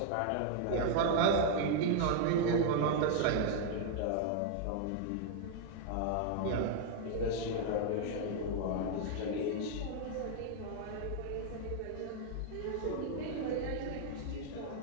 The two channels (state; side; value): different; both; correlation 0.00